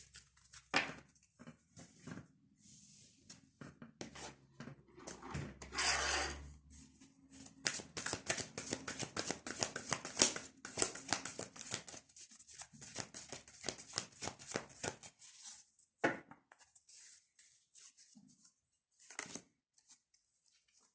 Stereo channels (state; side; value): identical; both; correlation 1.00